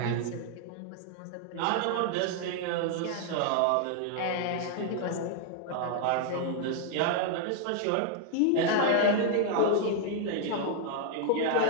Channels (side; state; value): both; different; correlation 0.00